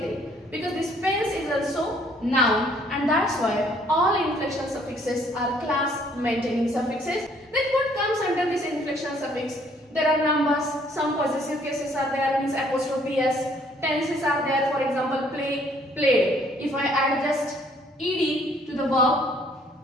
because this pens is also noun, and that's why all inflectional suffixes are class maintaining suffixes. Then what comes under this inflectional suffix? There are numbers, some possessive cases are there, means apostrophe s, tenses are there, for example play, played. If I add just ed to the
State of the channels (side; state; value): both; normal; correlation 0.63